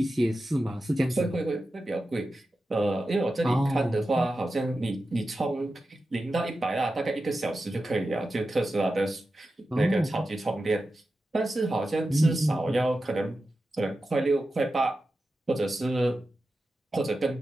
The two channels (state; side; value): normal; both; correlation 0.92